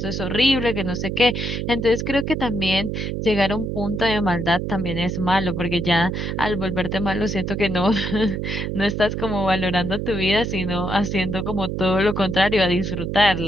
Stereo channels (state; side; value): noise; right; hum, 3 dB below the sound